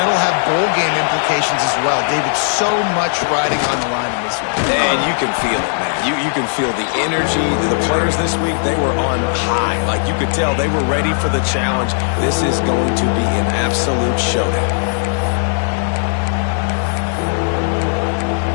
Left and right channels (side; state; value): right; silent; 61 dB below the other